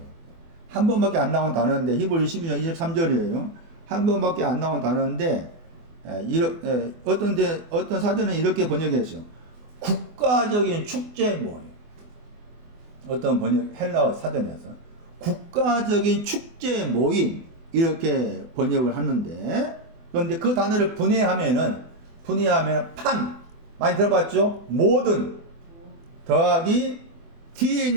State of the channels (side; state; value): left; late; 24 ms